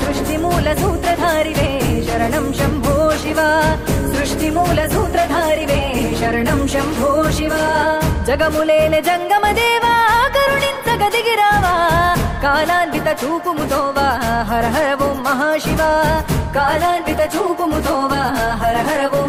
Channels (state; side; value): identical; both; correlation 1.00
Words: సృష్టి మూల సూత్రధారివే శరణం శంభో శివ సృష్టి మూల సూత్రధారివే శరణం శంభో శివ జగములేలె జంగమదేవా కరుణించగదిగిరావా కాలాన్విత చూపుముతోవా హర హర ఓం మహాశివ కాలాన్విత చూపుముతోవా హర హర